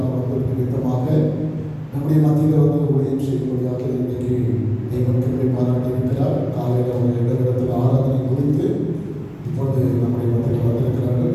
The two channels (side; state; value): both; identical; correlation 1.00